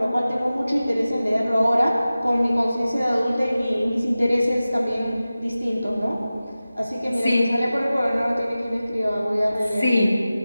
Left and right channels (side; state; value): both; inverted; correlation -0.96